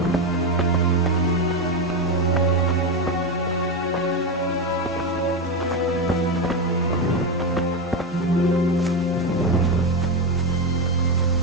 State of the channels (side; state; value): both; normal; correlation 0.12